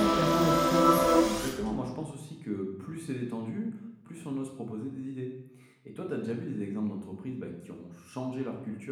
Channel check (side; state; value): both; identical; correlation 1.00